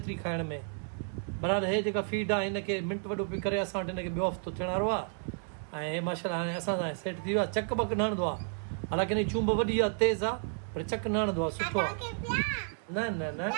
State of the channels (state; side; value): silent; left; 57 dB below the other